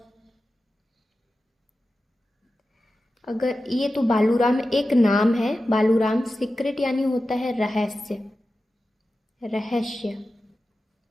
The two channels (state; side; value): normal; both; correlation 0.93